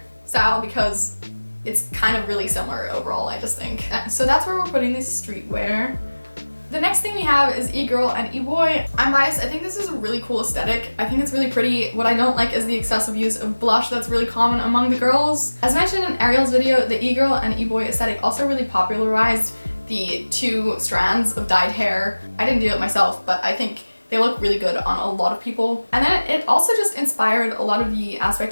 style because it's kind of really similar overall, I just think. So that's where we're putting this streetwear. The next thing we have is e-girl and e-boy. I'm biased, I think this is a really cool aesthetic. I think it's really pretty. What I don't like is the excessive use of blush that's really common among the girls. As mentioned in Ariel's video, the e-girl and e-boy aesthetic also really popularized the two strands of dyed hair. I didn't do it myself, but I think they look really good on a lot of people. And then it also just inspired a lot of the aspect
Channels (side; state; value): both; inverted; correlation -1.00